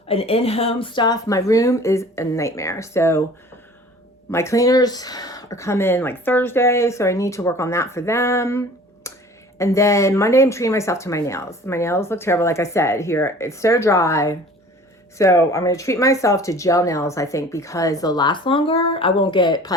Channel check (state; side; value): normal; both; correlation 0.46